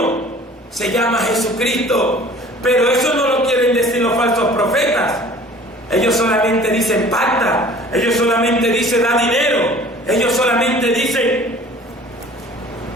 se llama Jesucristo. Pero eso no lo quieren decir los falsos profetas. Ellos solamente dicen pacta, ellos solamente dicen da dinero, ellos solamente dicen:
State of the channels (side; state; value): both; normal; correlation 0.48